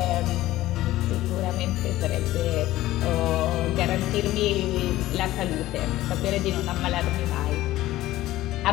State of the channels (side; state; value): right; quieter; 15.8 dB